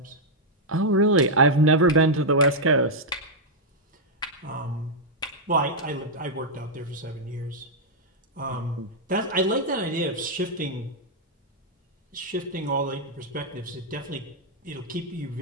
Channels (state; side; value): normal; both; correlation -0.04